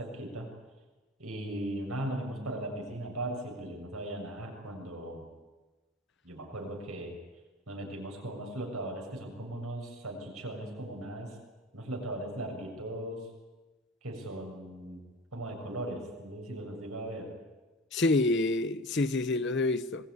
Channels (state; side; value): normal; both; correlation 0.36